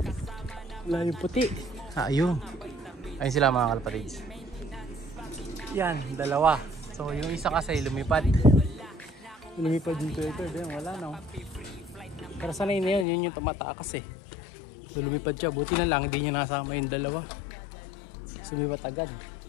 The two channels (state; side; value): drops out; right; at 13.1 s